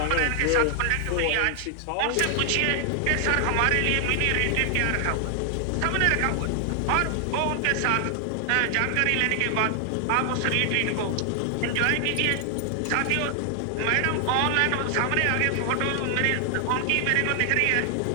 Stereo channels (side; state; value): both; different; correlation 0.00